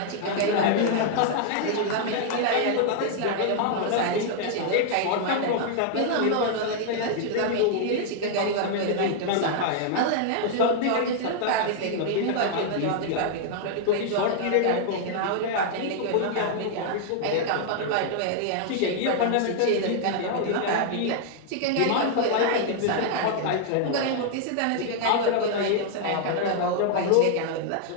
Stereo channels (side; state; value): both; different; correlation -0.01